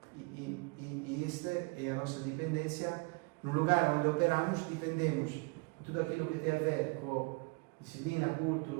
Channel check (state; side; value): quieter; left; 28.6 dB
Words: E esta é a nossa dependência. No lugar onde operamos, dependemos de tudo aquilo que tem a ver com disciplina,